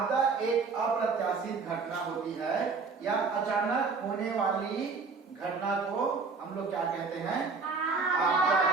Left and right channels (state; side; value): quieter; left; 4.7 dB